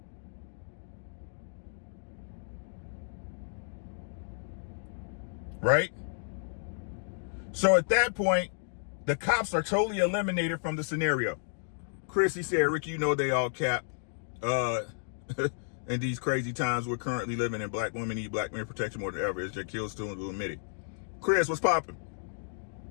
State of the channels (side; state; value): right; silent; digital silence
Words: Right? So at that point, the cops are totally eliminated from the scenario. Chris, he said, Rick, you know they all cap. In these crazy times we're currently living in, black women need black men protection more than ever. It's just kill students who admit it. Chris, what's popping?